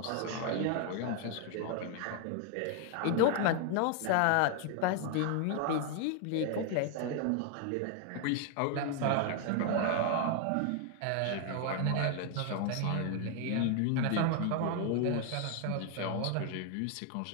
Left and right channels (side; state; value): both; different; correlation 0.00